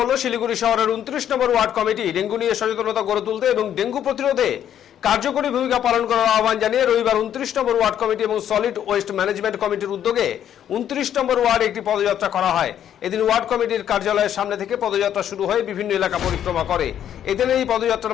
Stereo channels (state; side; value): quieter; right; 10.1 dB